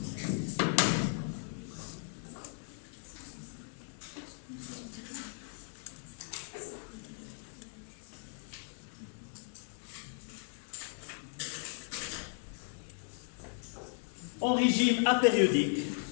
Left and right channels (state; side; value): silent; right; 53 dB below the other